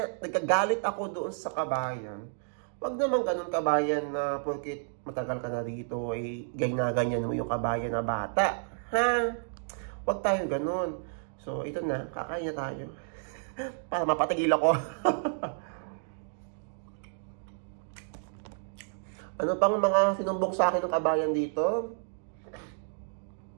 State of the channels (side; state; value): left; silent; digital silence